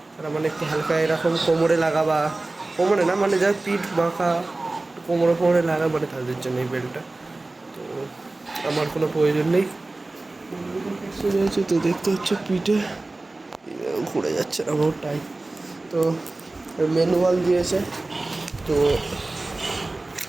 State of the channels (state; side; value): quieter; left; 3.0 dB